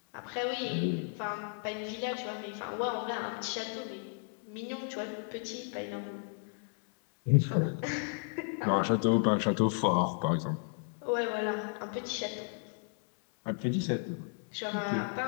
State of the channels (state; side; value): silent; right; 55 dB below the other